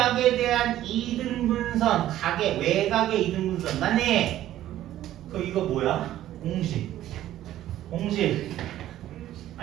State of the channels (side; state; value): left; quieter; 13.2 dB